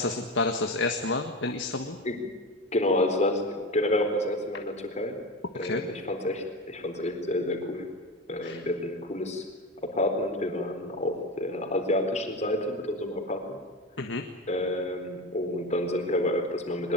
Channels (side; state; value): both; normal; correlation 0.23